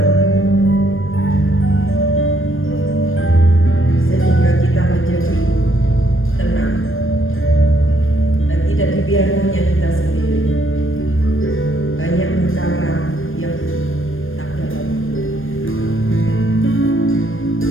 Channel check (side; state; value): right; late; 0.59 ms